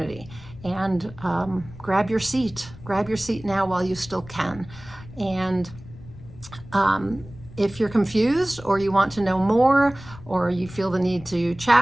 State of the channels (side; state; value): left; noise; rumble, 18 dB below the sound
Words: and grab your seat. Grab your seat now while you still can. And if you're confused, or you want to know more, or you feel the need to